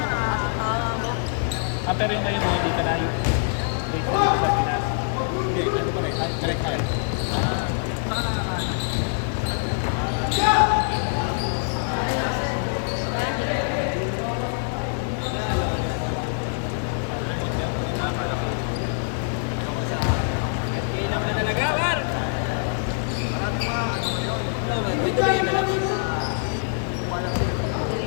Pero yun ngayon, hindi ka na yung base na sa Pinas. Hindi, ano pa rin? Direct hire. Kailan ka talaga, Mar?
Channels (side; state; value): right; silent; 62 dB below the other